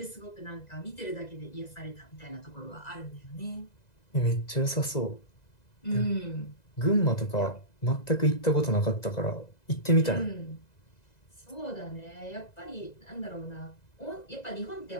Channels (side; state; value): right; late; 2.0 ms